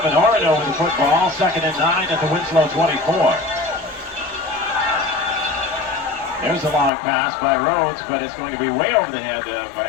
Orono with the football. 2nd and 9 at the Winslow 24. There's a long pass by Rhodes, but it's going to be way over the head of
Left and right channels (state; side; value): drops out; right; at 6.9 s